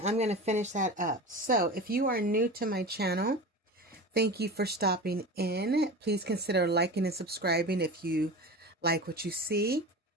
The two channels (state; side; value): normal; both; correlation 0.31